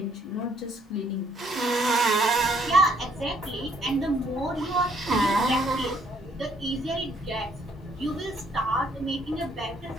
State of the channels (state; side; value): normal; both; correlation 0.66